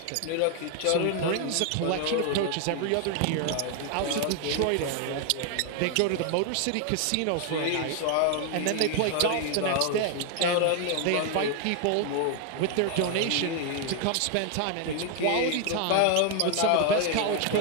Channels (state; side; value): different; both; correlation 0.00